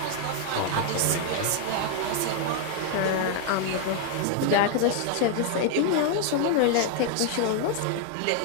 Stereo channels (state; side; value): different; both; correlation 0.00